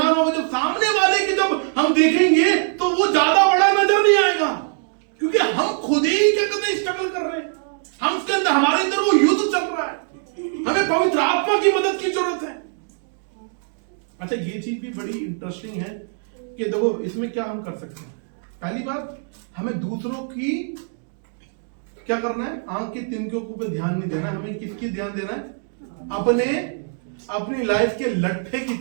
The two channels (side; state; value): left; silent; 64 dB below the other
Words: होगा। जब सामने वाले की जब हम देखेंगे तो वो ज्यादा बड़ा नजर नहीं आएगा, क्योंकि हम खुद ही क्या कहते हैं स्ट्रगल कर रहे हैं, हम उसके अंदर, हमारे अंदर वो युद्ध चल रहा है, हमें पवित्र आत्मा की मदद की जरूरत है। अच्छा, ये चीज भी बड़ी इंटरेस्टिंग है कि देखो इसमें क्या हम कर सकते हैं। पहली बात, हमें दूसरों की क्या करना है, आंख की तिनकों पे ध्यान नहीं देना, हमें किसकी ध्यान देना है, अपनी लाइफ के लट्ठे की